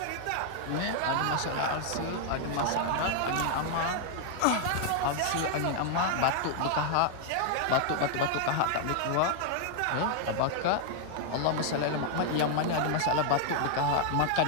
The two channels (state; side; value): different; both; correlation 0.00